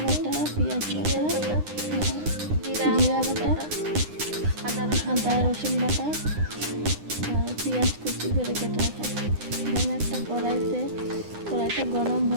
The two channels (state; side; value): late; left; 9.8 ms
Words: বাটা, পেঁয়াজ বাটা, জিরা বাটা, আদা রসুন বাটা, আর পেঁয়াজ কুচি করে কেটে রাখা। এখানে একটা কড়াইটা গরম